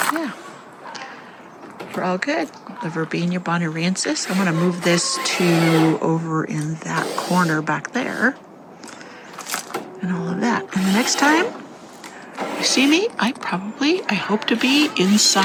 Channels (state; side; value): identical; both; correlation 1.00